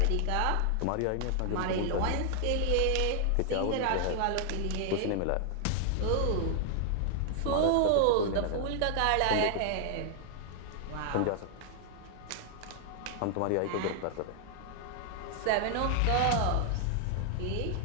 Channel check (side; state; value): both; different; correlation 0.00